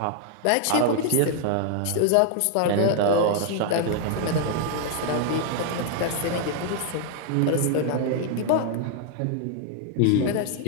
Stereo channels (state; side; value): different; both; correlation 0.00